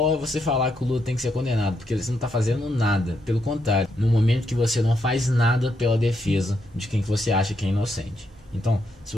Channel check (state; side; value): normal; both; correlation 0.79